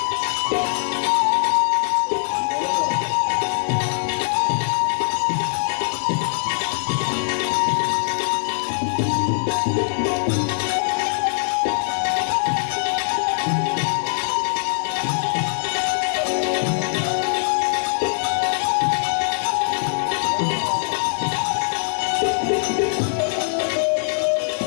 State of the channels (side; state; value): right; silent; 61 dB below the other